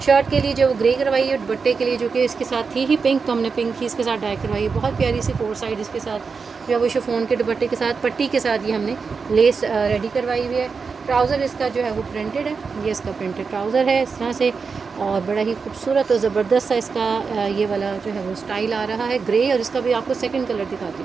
शर्ट के लिए जो ग्रे करवाई है, दुपट्टे के लिए जो कि इसके साथ थी ही पिंक, तो हमने पिंक ही इसके साथ डाई करवाई है। बहुत प्यारी सी 4 साइड इसके साथ जो है वो शिफॉन के दुपट्टे के साथ पट्टी के साथ ये हमने लेस रेडी करवाई हुई है। ट्राउज़र इसका जो है वो प्रिंटेड है, ये इसका प्रिंटेड ट्राउज़र है इस तरह से, और बड़ा ही खूबसूरत और ज़बरदस्त सा इसका ये वाला जो है वो स्टाइल आ रहा है ग्रे। और इसका भी आपको सेकंड कलर दिखाती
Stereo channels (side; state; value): left; quieter; 5.1 dB